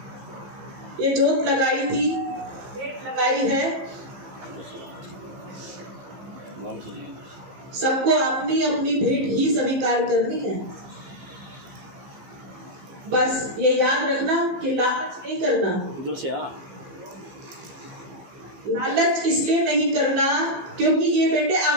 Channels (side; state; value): left; late; 15 ms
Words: ये जोत लगाई थी, भेंट लगाई है, सबको अपनी अपनी भेंट ही स्वीकार करनी है। बस ये याद रखना कि लालच नहीं करना। लालच इसलिए नहीं करना क्योंकि ये बेटे